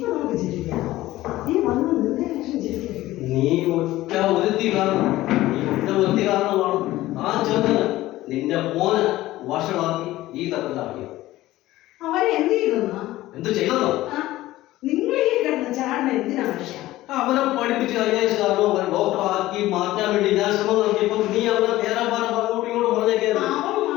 നമുക്ക് ചിരിക്കാം. നീ വന്ന് നിന്റെ ലക്ഷം ചിരിക്കരുത്. നീ ഒറ്റ ഒരുത്തി കാരണം ആ ചെറുക്കന് നിന്റെ മോനെ വഷളാക്കി ഈ തരത്തിലാക്കിയത്. അവനെ എന്ത് ചെയ്തെന്നാ? എന്ത് ചെയ്തെന്നോ? നിങ്ങൾ ഈ കിടന്ന് ചാടുന്ന എന്തിനാ മനുഷ്യ? അവനെ പഠിപ്പിച്ച് കഴിഞ്ഞാൽ ഡോക്ടർ ആക്കി മാറ്റാൻ വേണ്ടി ഞാൻ ശ്രമം നടത്തിയപ്പോൾ നീ അവനെ തേരാപാരം അങ്ങോട്ടും ഇങ്ങോട്ടും പറഞ്ഞേക്കായിരുന്നു. അവൻ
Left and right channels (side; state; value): right; quieter; 16.4 dB